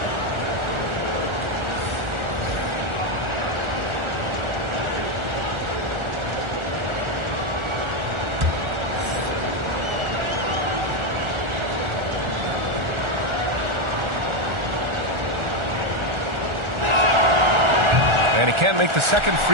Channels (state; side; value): late; left; 1.4 ms